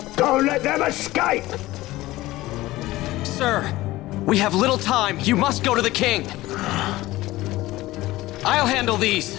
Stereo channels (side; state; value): right; quieter; 17.8 dB